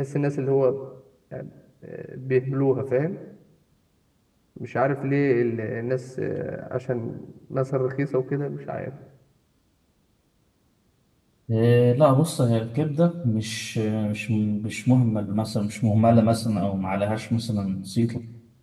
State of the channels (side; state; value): both; identical; correlation 1.00